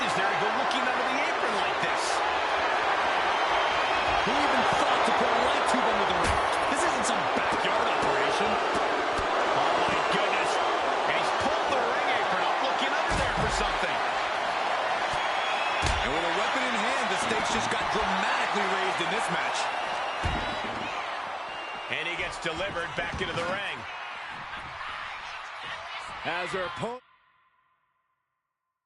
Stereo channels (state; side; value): identical; both; correlation 1.00